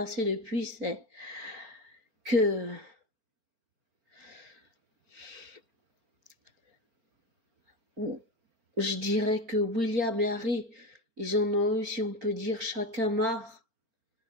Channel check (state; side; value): late; left; 4.4 ms